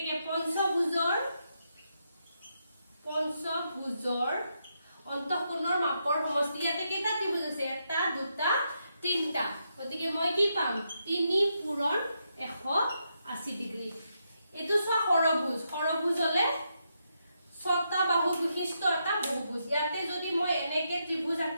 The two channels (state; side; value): inverted; both; correlation -0.82